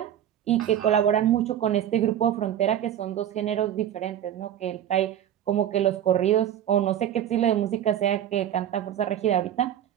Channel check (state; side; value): quieter; left; 10.6 dB